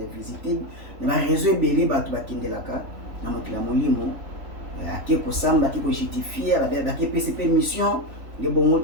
na bareseau ebele bato bakendelaka na mokili ya molimo ake kosamba ake kojustifier bake pesi mpe mission nde bongo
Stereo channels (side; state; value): left; late; 3.4 ms